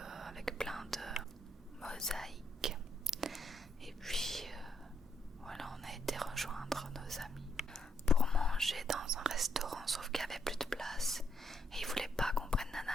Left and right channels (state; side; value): normal; both; correlation 0.75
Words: avec plein de mosaïques. Et puis voilà, on a été rejoindre nos amis pour manger dans un restaurant, sauf qu'il n'y avait plus de place et ils voulaient pas qu'on prenne Nana